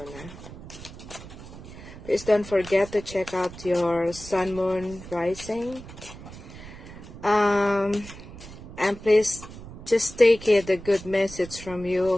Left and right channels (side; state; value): right; noise; rumble, 15 dB below the sound